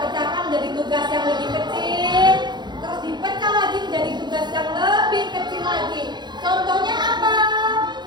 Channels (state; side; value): late; left; 0.21 ms